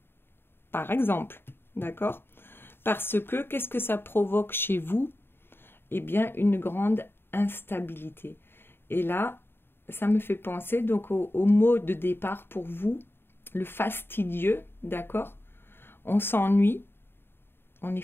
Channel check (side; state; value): right; late; 0.11 ms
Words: par exemple, d'accord? Parce que, qu'est-ce que ça provoque chez vous? Eh bien, une grande instabilité. Et là, ça me fait penser donc au mot de départ pour vous, le fastidieux, d'accord? On s'ennuie, on est